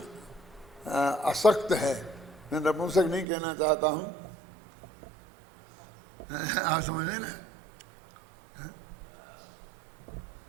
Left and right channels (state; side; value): drops out; left; at 3.2 s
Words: असक्त है। मैं नपुंसक नहीं कहना चाहता हूँ, आप समझे ना,